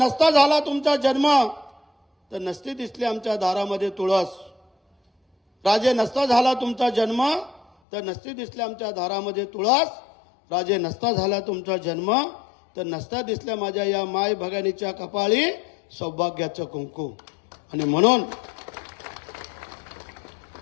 झाला तुमचा जन्म तर नसते दिसले आमच्या दारामध्ये तुळस। राजे नसता झाला तुमचा जन्म तर नसते दिसले आमच्या दारामध्ये तुळस। राजे नसता झाला तुमचा जन्म तर नसता दिसल्या माझ्या या माय भगिनीच्या कपाळी सौभाग्याचं कुंकू। आणि म्हणून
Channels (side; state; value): right; drops out; at 7.7 s